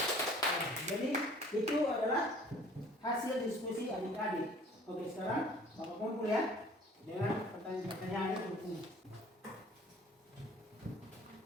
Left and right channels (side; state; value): both; normal; correlation 0.51